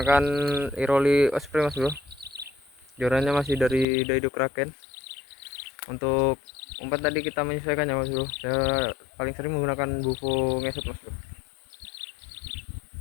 Iroli Osprey mas bro, jorannya masih dari Daido Kraken. Untuk umpan tadi kita menyesuaikan ya mas bro, saya paling sering menggunakan bufo ngesot mas bro.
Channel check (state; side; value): drops out; right; at 3.9 s